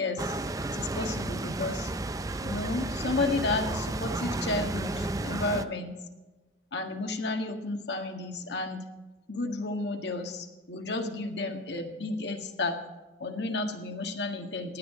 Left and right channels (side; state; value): both; normal; correlation 0.34